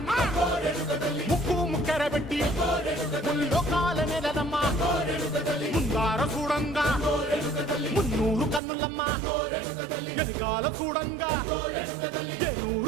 ముక్కు ముక్కెర పెట్టి ముల్లోకాల నెలనమ్మా ముందార చూడంగా మున్నూరు కన్నులమ్మా వెనకాల చూడంగా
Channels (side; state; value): left; drops out; at 8.6 s